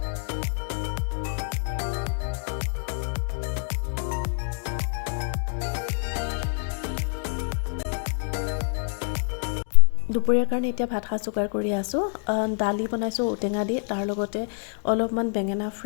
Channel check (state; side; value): silent; right; 60 dB below the other